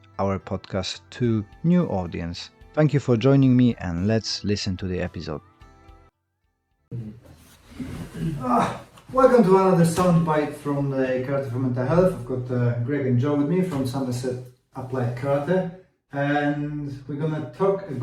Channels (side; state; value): both; identical; correlation 1.00